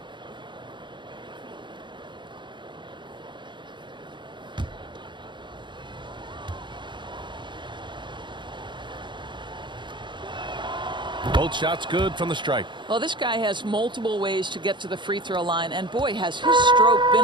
Both shots good from the stripe. Well, this guy has multiple ways to get to the free throw line, and boy, has his stroke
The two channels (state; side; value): late; left; 0.23 ms